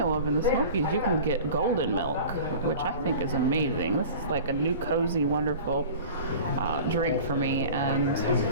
of in the Smokies you can get golden milk, which I think is amazing. This is like a new cozy, wonderful drink for me. And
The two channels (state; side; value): inverted; both; correlation -0.39